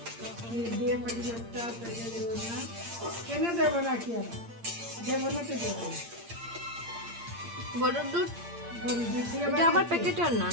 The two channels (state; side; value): late; left; 8.7 ms